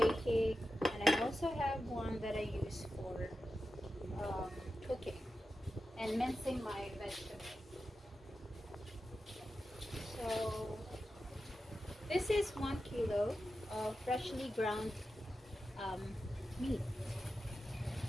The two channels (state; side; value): normal; both; correlation 0.91